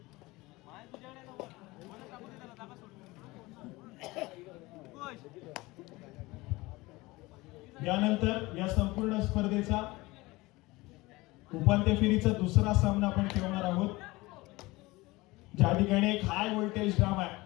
यानंतर या संपूर्ण स्पर्धेचा उपांत्य फेरीचा दुसरा सामना आपण खेळणार आहोत, ज्या ठिकाणी एक हाय व्होल्टेज ड्रामा आहे.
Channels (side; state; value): right; quieter; 21.4 dB